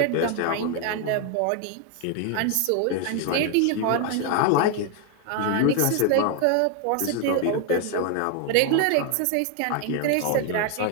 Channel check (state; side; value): different; both; correlation 0.01